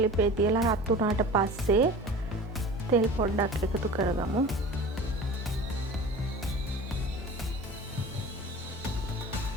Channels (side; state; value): both; normal; correlation 0.38